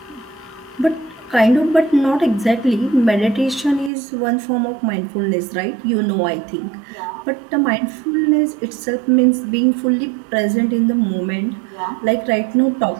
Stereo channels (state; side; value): drops out; left; at 3.9 s